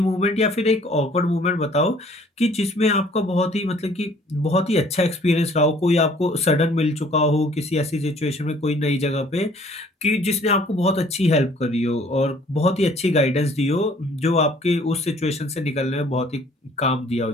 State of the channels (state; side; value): normal; both; correlation 0.56